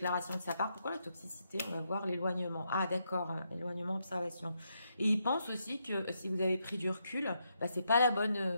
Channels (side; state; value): both; inverted; correlation -0.80